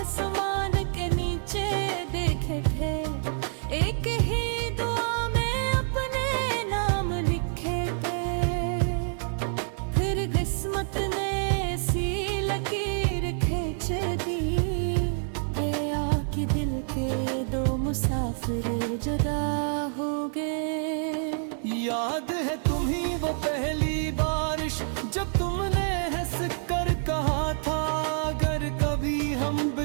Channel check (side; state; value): left; silent; 60 dB below the other